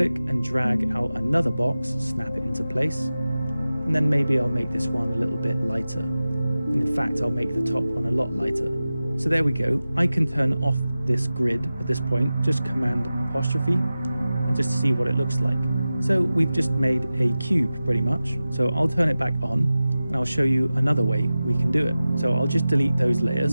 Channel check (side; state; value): both; inverted; correlation -0.95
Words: and drag out another box, snap it into place, and then maybe I'll make this one a little bit lighter. And in fact, I'll make the top one a lot lighter. So there we go. I can turn off this grid at this point, just Command apostrophe, and just see what it looks like. So we've just made a cube pretty much. So I'll turn it back on and I'll show you another way we can do it. So I'll just delete those